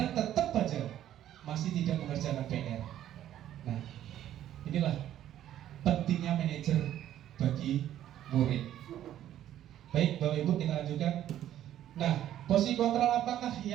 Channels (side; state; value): left; quieter; 11.8 dB